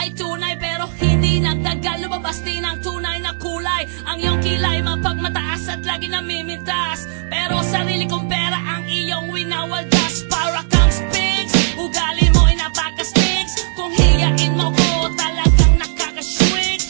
tunay, pero hindi nagtagal, lumabas din ang tunay na kulay. Ang iyong kilay mapagmataas at lagi namimintas, pero sarili kong pera ang iyong winawaldas. Para kang Sphinx, ugali mo ay napaka-stinks. Kung hiyain mo ko, talagang nakaka-shrink.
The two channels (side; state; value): left; silent; digital silence